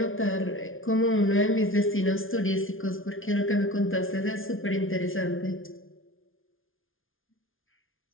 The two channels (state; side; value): late; right; 0.59 ms